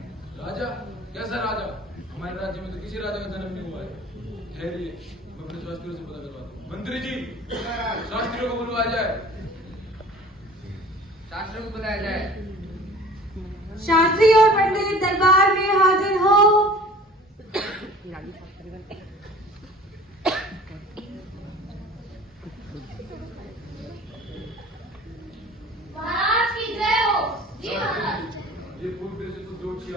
राजा? कैसा राजा? हमारे राज्य में तो किसी राजा का जन्म नहीं हुआ है। ठहरिए, मैं अपने शास्त्रियों से पता करवाता हूँ। मंत्री जी, शास्त्रियों को बुलवाया जाए। शास्त्रियों को बुलाया जाए। शास्त्री और पंडित दरबार में हाजिर हो। महाराज की जय हो। जी महाराज। ये पूर्व देश से कुछ ज्योतिषी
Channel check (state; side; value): normal; both; correlation 0.45